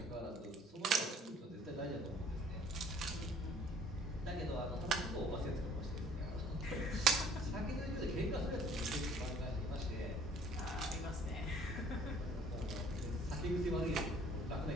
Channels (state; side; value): normal; both; correlation 0.56